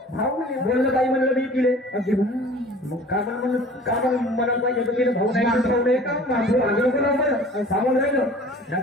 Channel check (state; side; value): normal; both; correlation 0.46